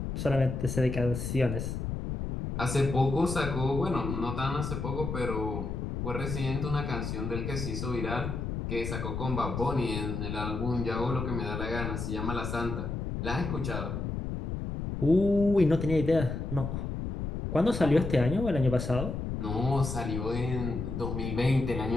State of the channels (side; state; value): left; noise; rumble, 4 dB below the sound